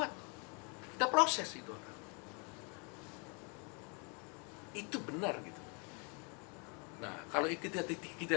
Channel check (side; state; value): right; quieter; 34.6 dB